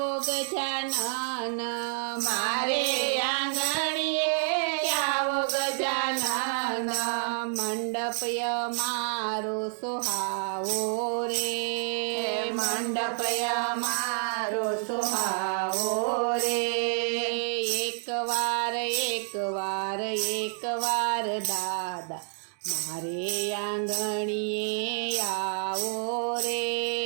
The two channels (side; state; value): left; silent; 59 dB below the other